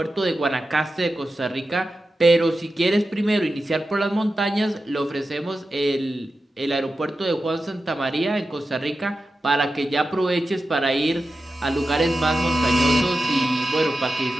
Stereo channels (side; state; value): both; normal; correlation 0.92